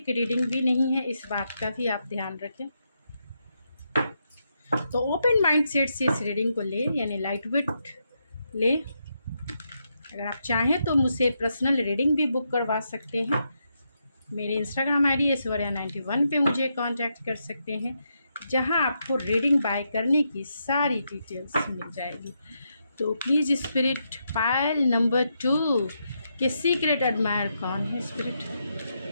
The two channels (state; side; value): inverted; both; correlation -0.82